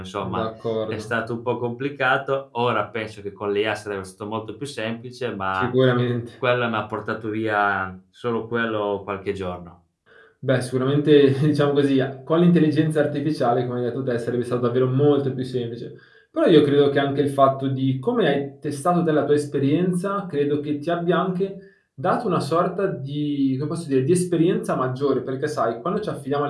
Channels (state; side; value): identical; both; correlation 1.00